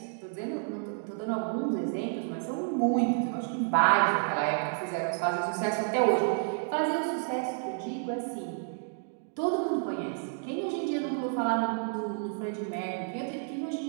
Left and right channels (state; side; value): silent; left; 58 dB below the other